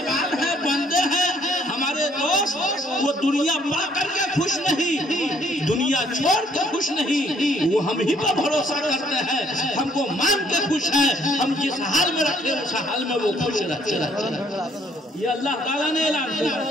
है, बंदे हैं, हमारे दोस्त, वो दुनिया पा करके खुश नहीं, दुनिया छोड़ के खुश नहीं, वो हम ही पर भरोसा करते हैं, हमको मान के खुश है। हम जिस हाल में रखे उस हाल में वो खुश रहते। ये अल्लाह ताला ने ऐलान किया,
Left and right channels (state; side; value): normal; both; correlation 0.65